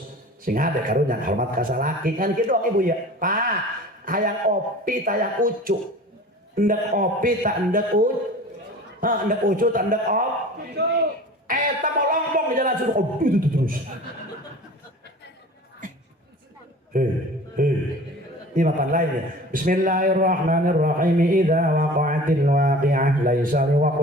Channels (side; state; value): both; normal; correlation 0.41